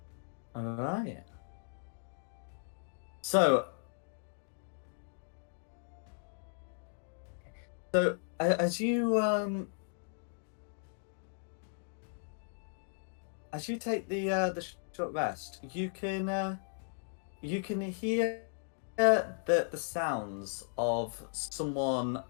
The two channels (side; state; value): right; silent; digital silence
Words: All right. So as you take the short rest, you can hear the sounds of someone